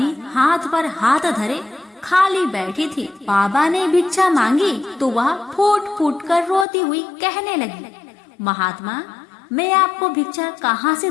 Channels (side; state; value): right; drops out; at 6.7 s